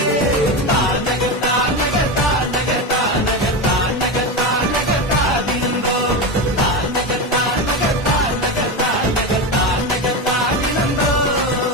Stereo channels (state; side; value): normal; both; correlation 0.18